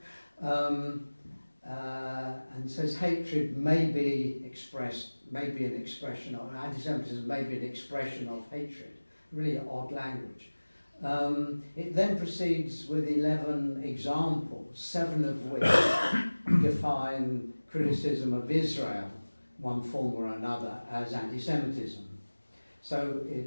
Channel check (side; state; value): both; inverted; correlation -1.00